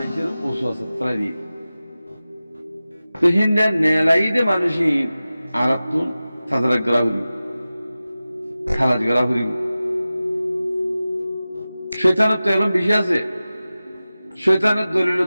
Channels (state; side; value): inverted; both; correlation -0.96